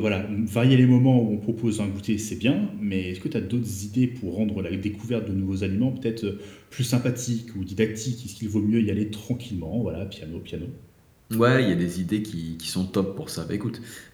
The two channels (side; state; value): both; identical; correlation 1.00